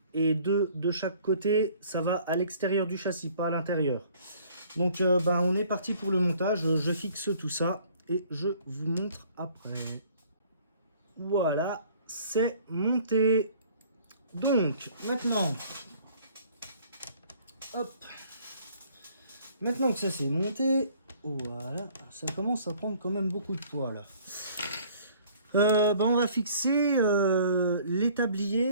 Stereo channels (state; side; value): inverted; both; correlation -0.56